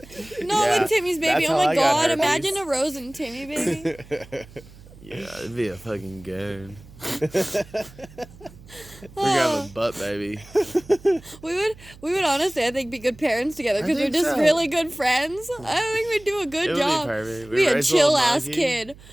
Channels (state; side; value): noise; right; hum, 21 dB below the sound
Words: No, Yeah, with Timmy's baby. that's Oh how my I got god. herpes. Imagine a Rose and Timmy baby. Yeah, it'd be a fucking goon. We're gonna have a butt baby. We would honestly, I think, be good parents together I because we're think just so. really good friends. I think we'd do a good It would be job. perfect. We Be a raise a little chill ass monkey. kid.